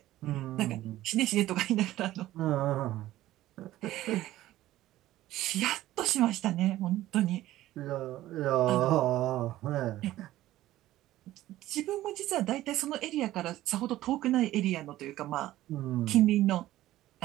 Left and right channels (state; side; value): quieter; left; 15.1 dB